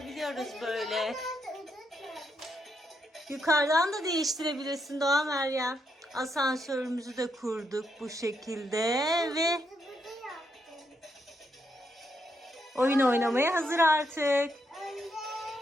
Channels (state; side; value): normal; both; correlation 0.79